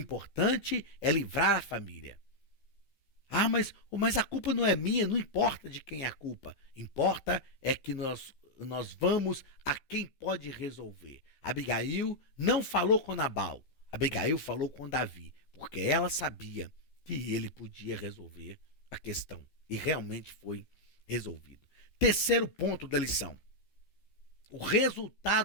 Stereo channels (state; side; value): late; right; 14 ms